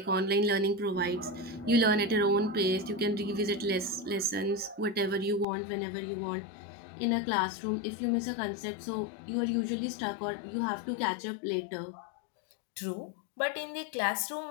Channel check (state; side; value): drops out; right; at 5.5 s